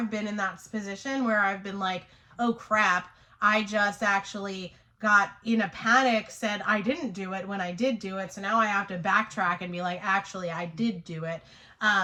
been in that position where I've been like, oh crap, I just actually got in a panic, said I didn't do it when I did do it. So now I have to backtrack and be like, actually, I did do it.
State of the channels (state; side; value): identical; both; correlation 1.00